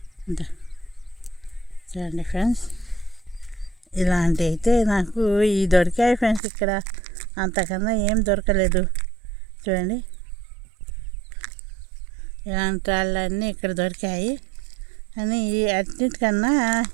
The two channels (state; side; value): drops out; left; at 6.4 s